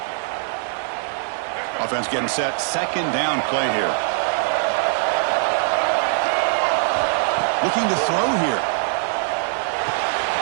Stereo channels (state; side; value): silent; left; digital silence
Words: Offense getting set. Second down play here. Looking to throw here.